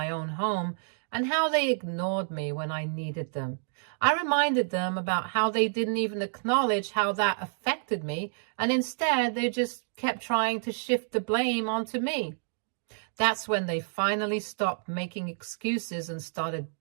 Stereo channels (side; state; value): left; silent; digital silence